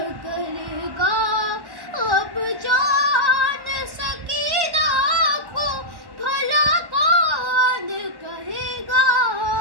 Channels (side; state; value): left; late; 1.1 ms